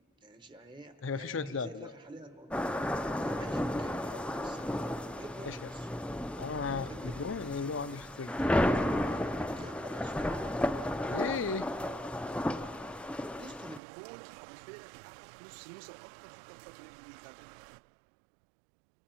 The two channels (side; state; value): left; drops out; at 13.8 s